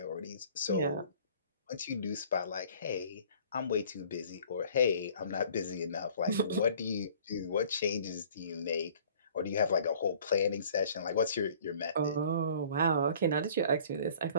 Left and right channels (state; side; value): inverted; both; correlation -0.52